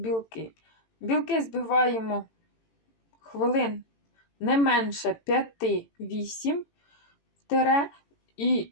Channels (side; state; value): right; late; 18 ms